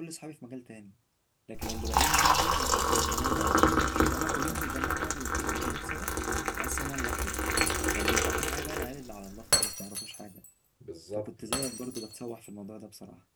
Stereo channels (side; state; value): both; identical; correlation 1.00